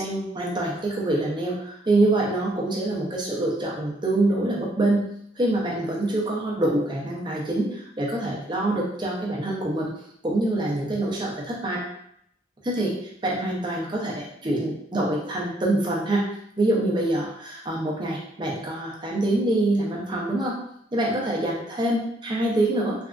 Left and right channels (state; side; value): normal; both; correlation 0.68